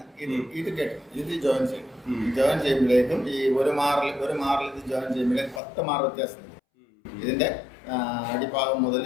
ഇത് കേട്ടത്. ഇത് ജോയിൻ ചെയ്യും. ജോയിൻ ചെയ്യുമ്പോഴേക്കും ഈ ഒരു മാറിൽ ഇത് ജോയിൻ ചെയ്യുമ്പോഴേക്കും 10 മാർ വ്യത്യാസം. ഇതിന്റെ അടിഭാഗം മുതൽ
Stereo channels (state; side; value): drops out; right; at 5.6 s